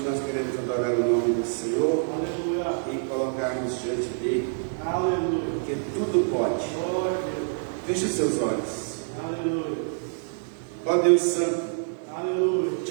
nós queremos adorar o nome do Senhor e colocarmos diante dele, porque tudo pode. Feche os seus olhos. Ó Deus Santo,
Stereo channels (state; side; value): silent; left; digital silence